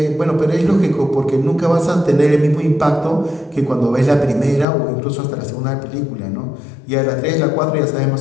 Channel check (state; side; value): drops out; right; at 4.7 s